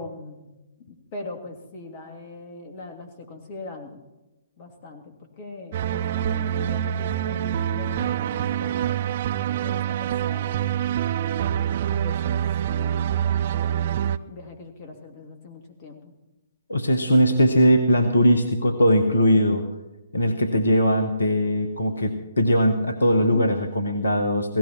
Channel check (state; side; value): inverted; both; correlation -0.73